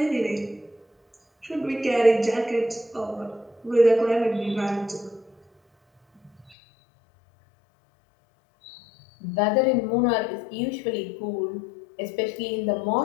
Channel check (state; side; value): drops out; right; at 6.6 s